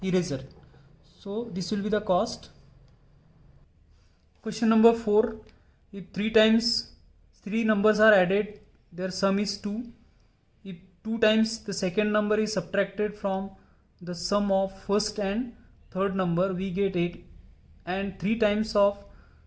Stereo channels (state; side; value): identical; both; correlation 1.00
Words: eraser. So this will be the cost. Question number 4. If 3 times 3 numbers are added, their sum is 2. If 2 times the second number is subtracted from the sum of first and third number, we get 8. And 3 times of